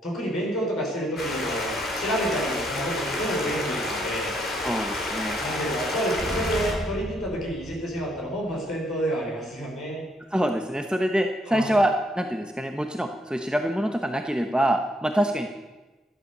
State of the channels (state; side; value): normal; both; correlation 0.72